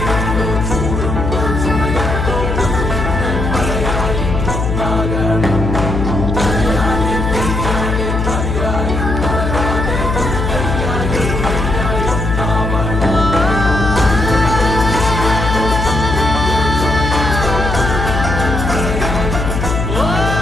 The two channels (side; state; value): left; noise; hum, 2 dB below the sound